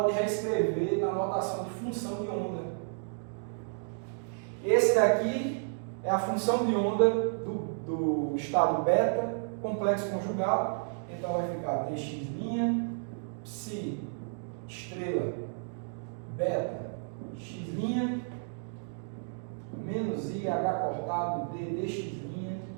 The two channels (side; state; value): left; silent; digital silence